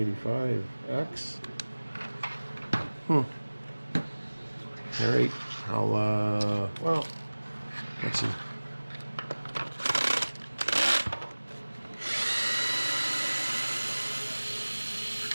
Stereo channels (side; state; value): both; inverted; correlation -1.00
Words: X. Alright, I'll, well, let's see.